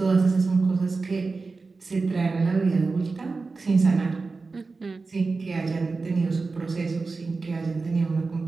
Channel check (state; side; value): quieter; left; 4.0 dB